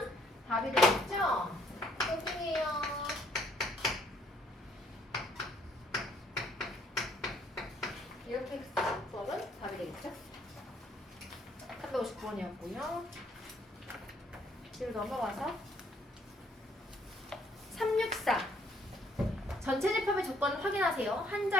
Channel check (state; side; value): normal; both; correlation 0.66